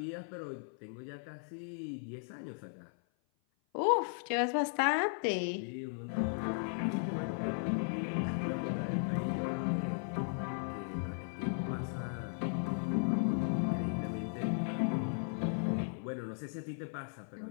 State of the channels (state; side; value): silent; right; 53 dB below the other